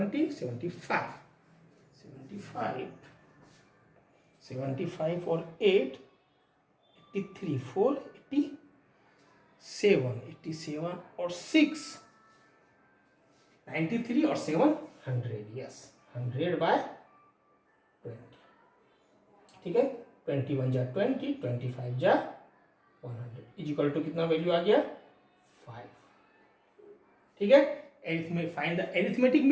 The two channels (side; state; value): both; identical; correlation 1.00